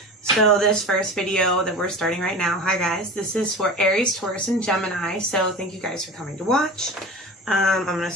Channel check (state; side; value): normal; both; correlation 0.33